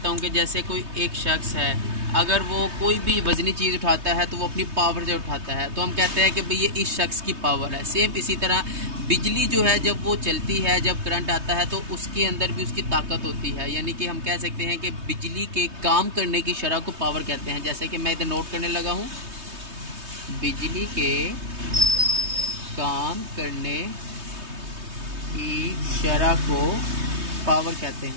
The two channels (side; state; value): left; late; 3.2 ms